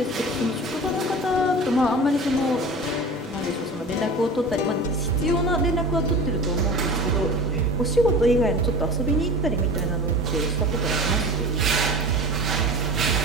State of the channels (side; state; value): both; normal; correlation 0.36